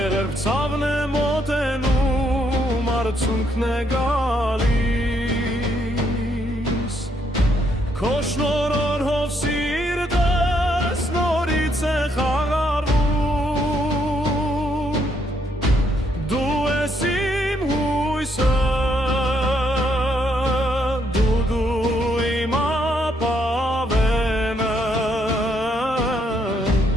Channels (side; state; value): both; normal; correlation 0.73